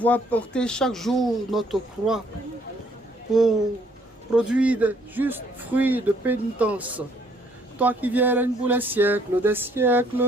porter chaque jour notre croix pour produire de justes fruits de pénitence. Toi qui viens règne pour les siècles des siècles.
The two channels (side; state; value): both; normal; correlation 0.65